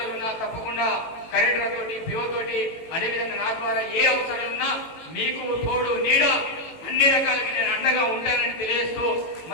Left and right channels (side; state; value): right; late; 18 ms